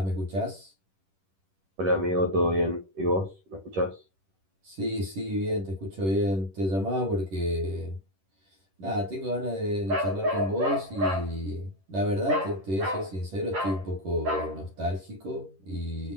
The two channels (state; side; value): late; left; 10 ms